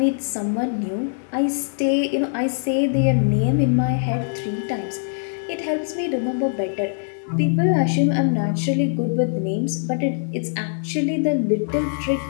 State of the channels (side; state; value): right; silent; 64 dB below the other